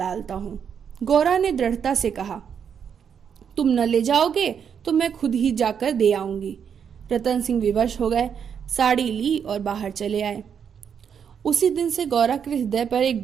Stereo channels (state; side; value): quieter; left; 7.5 dB